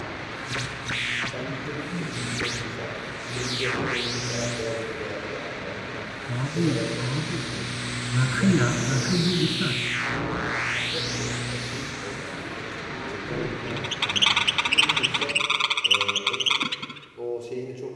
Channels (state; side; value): identical; both; correlation 1.00